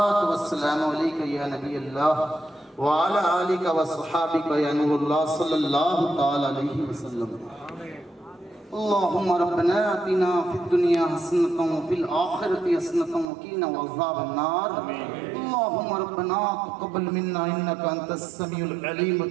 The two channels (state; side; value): drops out; left; at 13.3 s